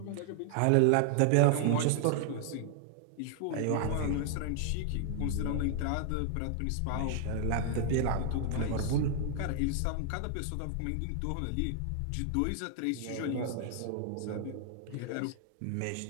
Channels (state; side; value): different; both; correlation 0.00